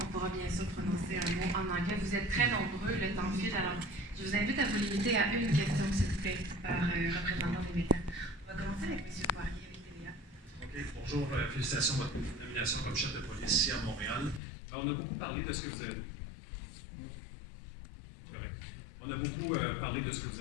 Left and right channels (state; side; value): drops out; right; at 14.4 s